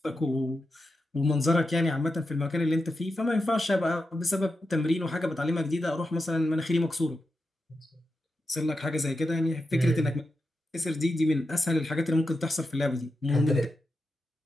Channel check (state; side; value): normal; both; correlation 0.88